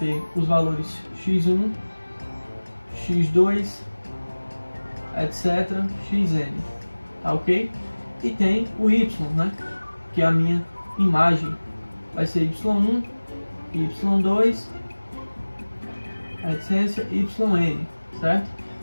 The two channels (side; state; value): both; inverted; correlation -1.00